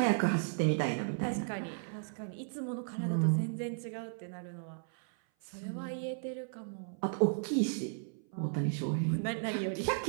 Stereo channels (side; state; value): left; silent; 55 dB below the other